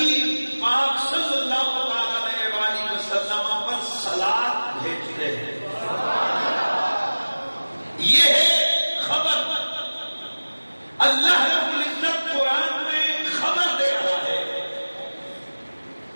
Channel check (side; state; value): both; inverted; correlation -1.00